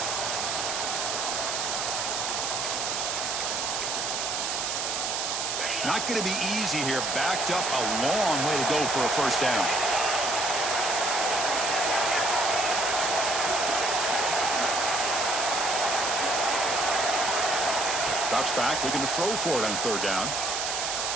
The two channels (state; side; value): noise; right; hiss, 1 dB below the sound